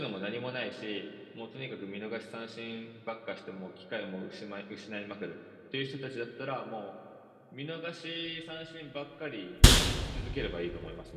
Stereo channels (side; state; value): both; identical; correlation 1.00